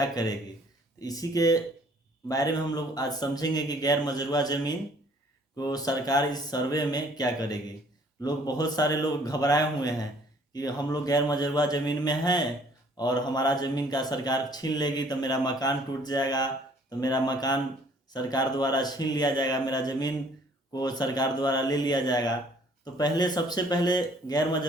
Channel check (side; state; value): both; normal; correlation 0.58